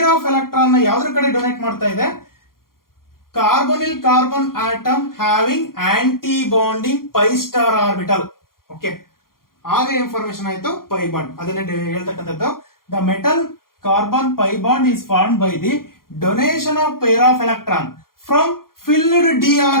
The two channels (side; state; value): right; late; 0.92 ms